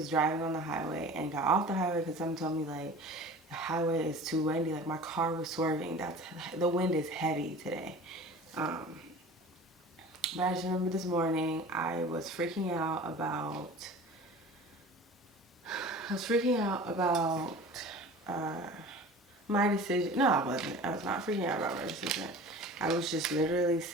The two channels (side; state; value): both; normal; correlation 0.40